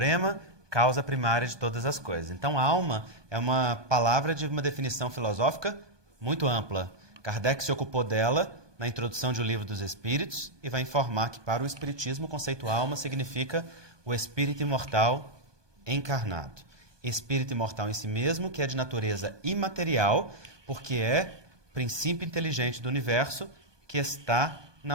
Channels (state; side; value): late; left; 1.2 ms